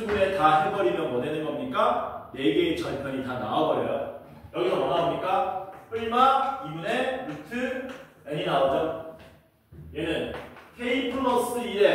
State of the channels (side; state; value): both; identical; correlation 1.00